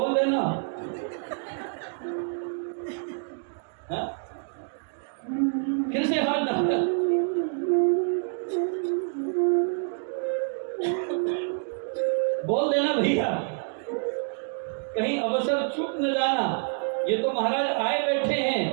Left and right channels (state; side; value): silent; left; 60 dB below the other